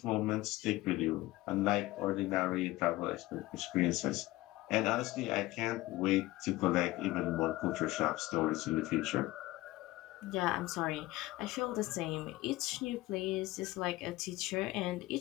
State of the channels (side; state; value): right; quieter; 18.4 dB